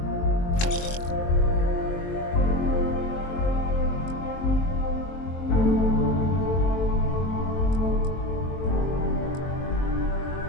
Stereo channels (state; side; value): late; right; 23 ms